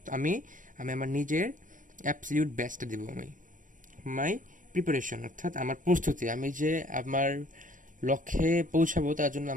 আমি আমার নিজের অ্যাবসলিউট বেস্টটা দেব. মাই প্রিপারেশন অর্থাৎ আমার প্রস্তুতি. আমি যে আমার লক্ষ্যে পৌঁছাবো তার জন্য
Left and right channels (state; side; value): late; left; 0.38 ms